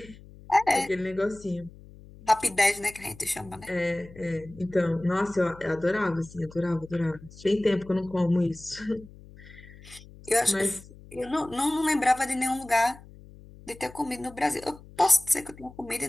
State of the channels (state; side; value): noise; left; hum, 20 dB below the sound